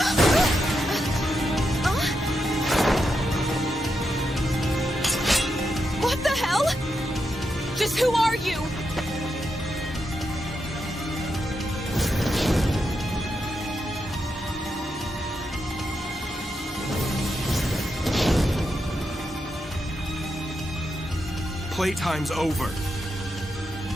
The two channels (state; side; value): normal; both; correlation 0.85